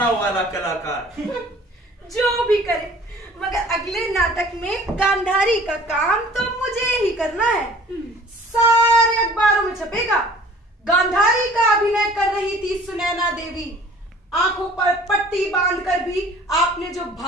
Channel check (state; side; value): normal; both; correlation 0.49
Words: वाला कलाकार। जो भी करे, मगर अगले नाटक में गांधारी का काम तो मुझे ही करना है। सारे अखबारों में छपेगा, गांधारी का अभिनय कर रही थी सुनैना देवी। आंखों पर पट्टी बांधकर भी आपने जो